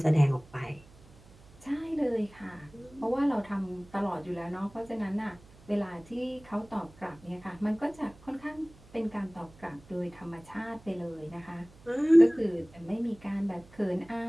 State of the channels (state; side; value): noise; right; hum, 24 dB below the sound